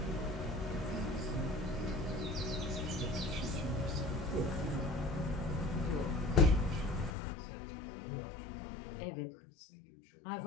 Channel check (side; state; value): right; drops out; at 7.1 s